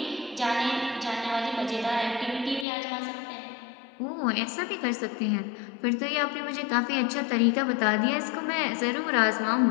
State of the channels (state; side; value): drops out; right; at 2.7 s